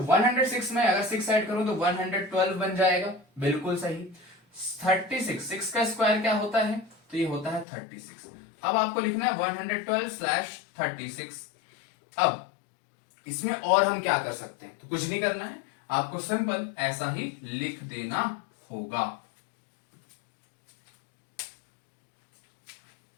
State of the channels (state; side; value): drops out; right; at 7.7 s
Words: में अगर 6 ऐड करूं तो 112 बन जाएगा, बिल्कुल सही। 36, 6 का स्क्वायर क्या होता है? तो ये होता है 36। अब आपको लिखना है 112/36। अब इसमें और हम क्या कर सकते हैं? तो कुछ नहीं करना है, आपको सिंपल ऐसा ही लिख देना होगा।